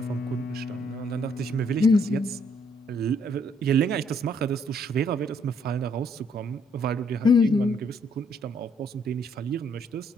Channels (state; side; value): normal; both; correlation 0.68